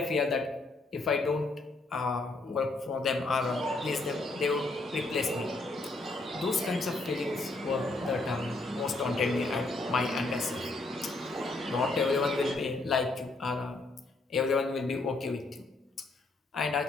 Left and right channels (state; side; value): quieter; right; 3.1 dB